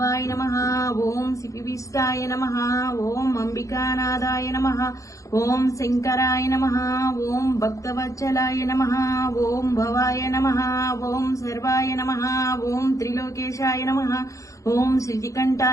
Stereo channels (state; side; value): late; right; 0.15 ms